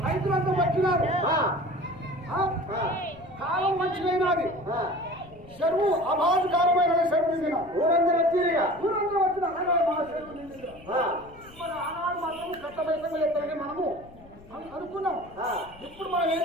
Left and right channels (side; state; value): left; noise; rumble, 22 dB below the sound